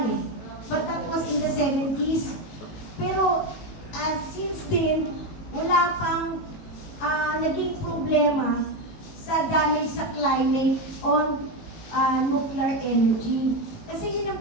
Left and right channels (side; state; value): right; late; 18 ms